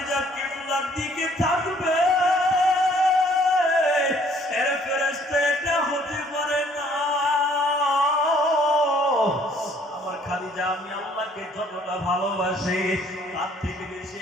কিবলার দিকে থাকবে। এর ফেরেশতা এটা হতে পারে না। খাদিজাকে যতটা ভালোবাসি তার থেকে বেশি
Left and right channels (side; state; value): both; normal; correlation 0.61